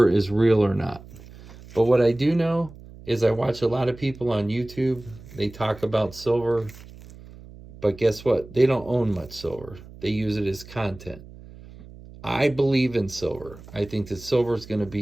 is real or not. But what I do know is I watch a lot of people on YouTube. They talk about silver. But guess what? They don't own much silver. They use it as content. I believe in silver. I think that silver is going to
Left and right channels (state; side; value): noise; right; hum, 18 dB below the sound